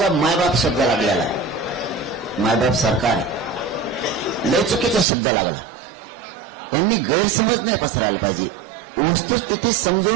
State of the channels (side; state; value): left; drops out; at 5.1 s